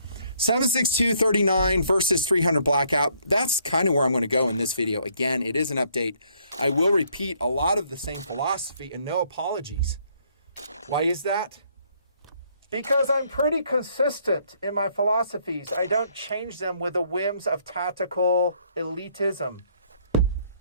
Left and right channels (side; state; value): both; inverted; correlation -0.67